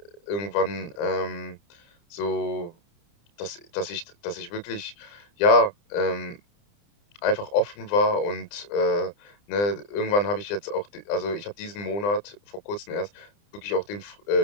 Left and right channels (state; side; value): late; right; 29 ms